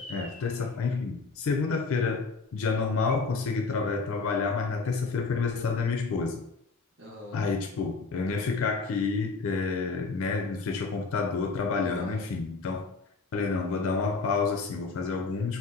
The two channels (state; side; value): quieter; right; 4.2 dB